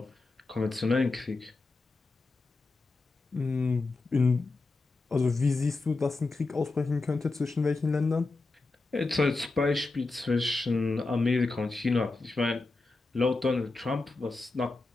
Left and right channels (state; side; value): quieter; right; 3.5 dB